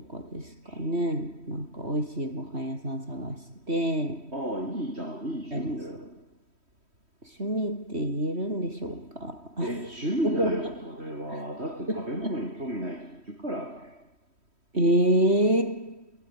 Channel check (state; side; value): late; left; 3.1 ms